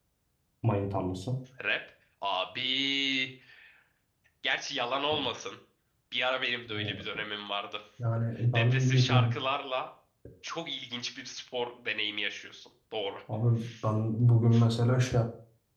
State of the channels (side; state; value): both; identical; correlation 1.00